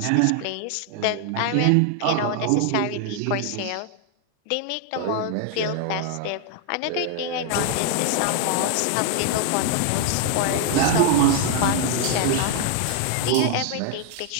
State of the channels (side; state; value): both; different; correlation 0.00